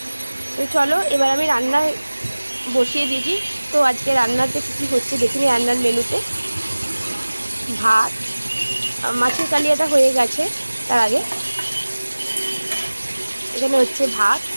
তো চলো এবার আমি রান্না বসিয়ে দিয়েছি। তো আজকে রান্নাতে কী কী হচ্ছে দেখিনি। রান্নার মেনুতে ভাত, মাছের কালিয়াটা হয়ে গেছে। তার আগে এখানে হচ্ছে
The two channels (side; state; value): both; inverted; correlation -1.00